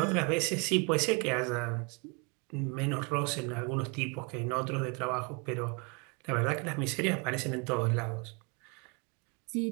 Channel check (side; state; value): left; quieter; 31.7 dB